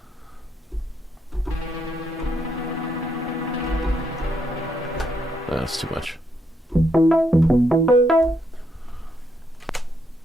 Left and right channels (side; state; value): both; normal; correlation 0.76